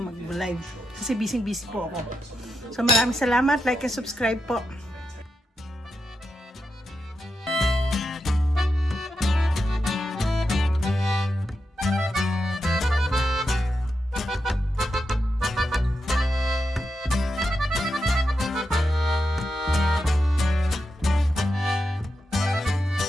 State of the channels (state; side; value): normal; both; correlation 0.87